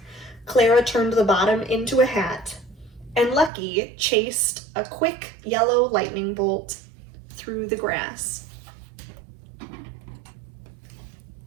Clara turned the bottom into a hat. And Lucky chased a quick yellow lightning bolt through the grass.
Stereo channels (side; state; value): left; drops out; at 3.5 s